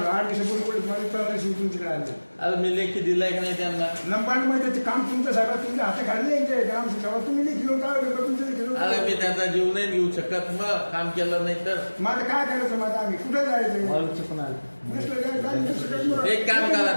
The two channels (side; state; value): both; inverted; correlation -1.00